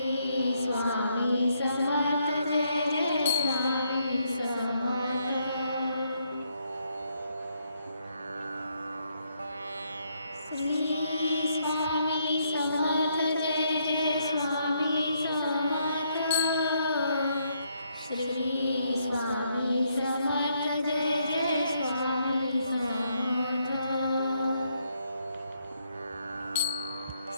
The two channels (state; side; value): inverted; both; correlation -0.74